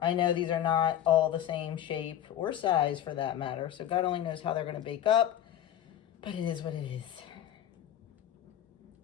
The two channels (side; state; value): right; quieter; 10.9 dB